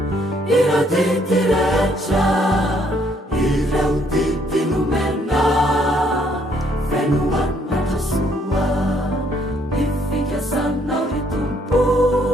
ira tity retra ireo tity nomena fenoan matrasoa ifikiasanao ry tompo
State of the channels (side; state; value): both; normal; correlation 0.67